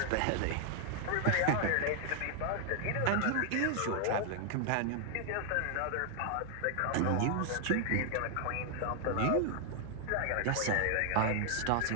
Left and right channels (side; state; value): both; different; correlation 0.00